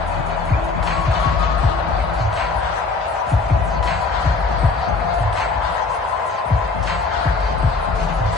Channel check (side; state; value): right; quieter; 4.0 dB